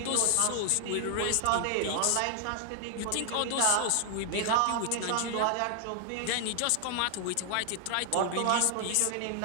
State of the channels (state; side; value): different; both; correlation 0.00